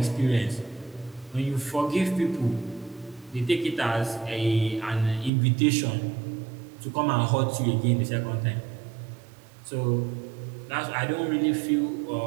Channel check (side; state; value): left; drops out; at 5.3 s